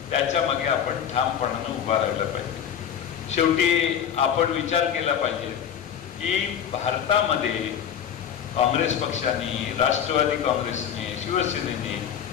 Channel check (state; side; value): quieter; right; 8.8 dB